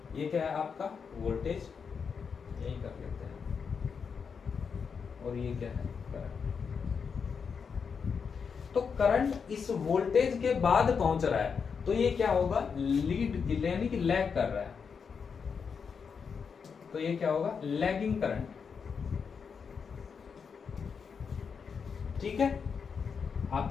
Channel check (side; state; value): right; quieter; 6.1 dB